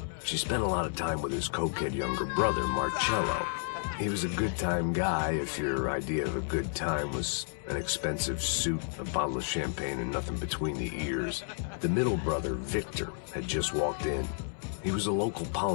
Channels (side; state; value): right; silent; 57 dB below the other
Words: She spent a lot of time with his cokehead younger brother, Marcello. He was a good-time guy if your idea of a good time was an expensive suit, a bottle of champagne, and nothing between the ears. The middle brother, Victor, had just walked in. He was a local